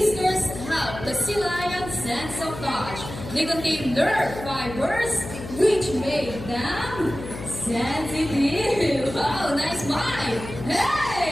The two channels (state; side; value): noise; left; hum, 11 dB below the sound